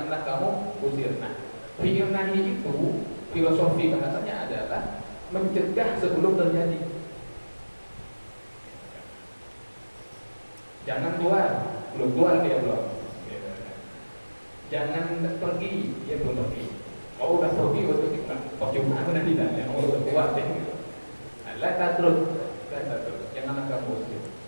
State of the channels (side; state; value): both; inverted; correlation -1.00